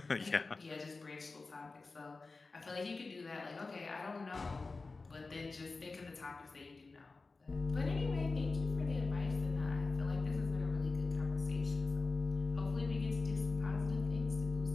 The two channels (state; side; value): quieter; right; 3.8 dB